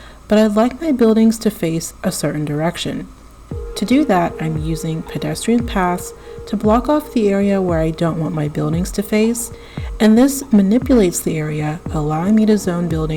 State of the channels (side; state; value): both; identical; correlation 1.00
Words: but I'd like my buildings to face a certain direction. To do that, I'm using pedestrian paths to block off the area where I don't want my buildings to face, and this manipulates the area, allowing me to zone